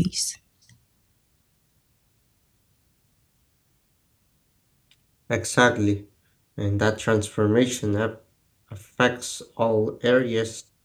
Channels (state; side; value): identical; both; correlation 1.00